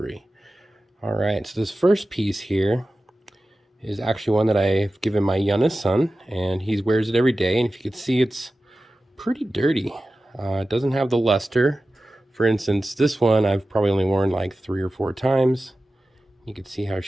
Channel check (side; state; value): both; normal; correlation 0.95